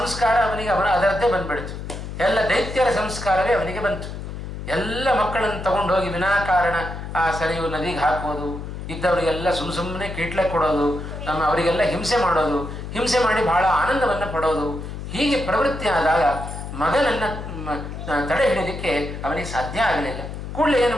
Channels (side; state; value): left; noise; hum, 8 dB below the sound